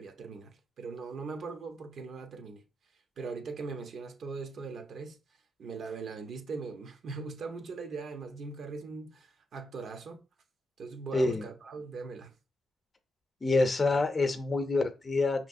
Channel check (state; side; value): normal; both; correlation 0.85